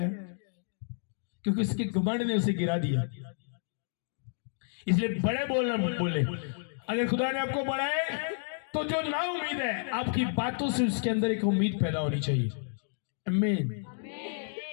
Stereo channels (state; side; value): silent; right; digital silence